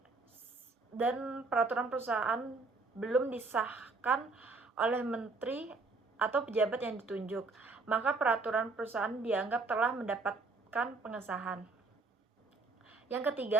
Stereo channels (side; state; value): left; quieter; 3.8 dB